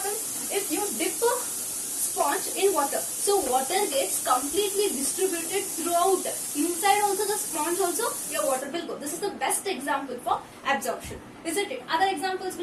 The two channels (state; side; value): identical; both; correlation 1.00